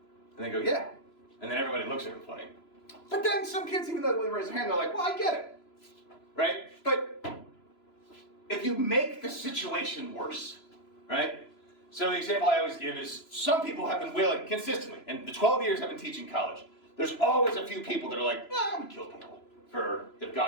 And they go, yeah. And then everybody looks at them funny. But then some kids, even though they raise their hand, they're like, well, I get it. Right? But if you make the situation worse, right? So the example I always give is some people have been willing consistently, and the 12 years I've been teaching college, there's always a few people that are like, I would kill people if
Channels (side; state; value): right; late; 3.0 ms